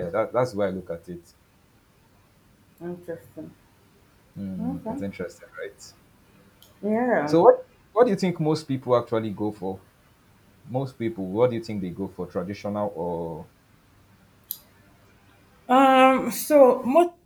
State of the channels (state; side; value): identical; both; correlation 1.00